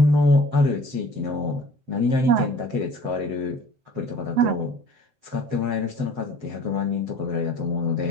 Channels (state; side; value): late; left; 7.8 ms